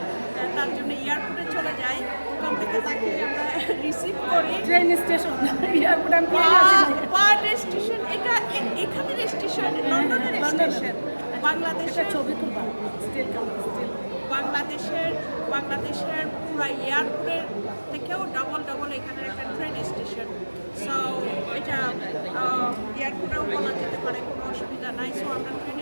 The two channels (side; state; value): both; inverted; correlation -1.00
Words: তার জন্য এয়ারপোর্টে চলে যাই। ওখান থেকে তাকে আমরা রিসিভ করি ট্রেন স্টেশন এয়ারপোর্ট আমি স্টেশন। এখানের স্টেশন, লন্ডনের স্টেশন। বাংলাদেশের ছবি তুলবা বাংলাদেশের পুরো এয়ারপোর্টের থেকেও ডবল এখানের একটা ট্রেন স্টেশন। সো এটা এয়ারপোর্টেও বলা যেতে পারে, কোনো অসুবিধা নাই। সো আমরা ট্রেন